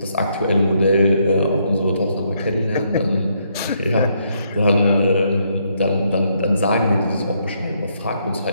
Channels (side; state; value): both; inverted; correlation -0.74